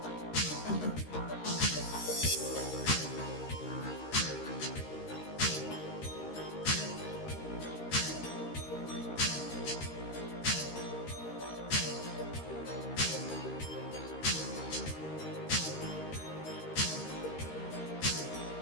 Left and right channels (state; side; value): late; right; 13 ms